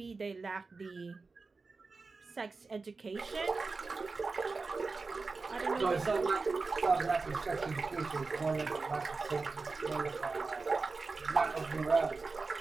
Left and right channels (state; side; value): quieter; left; 4.1 dB